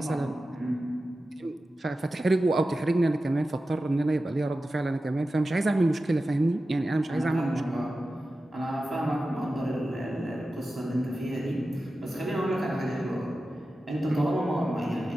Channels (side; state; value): both; normal; correlation 0.94